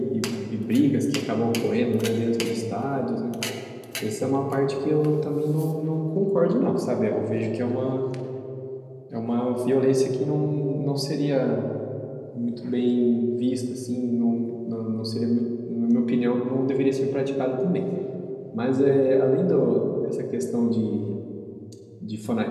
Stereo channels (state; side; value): identical; both; correlation 1.00